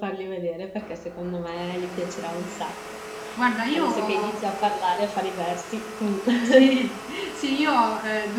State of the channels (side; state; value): both; identical; correlation 1.00